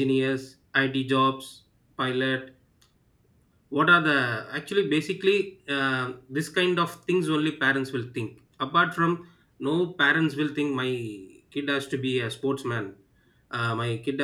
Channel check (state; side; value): identical; both; correlation 1.00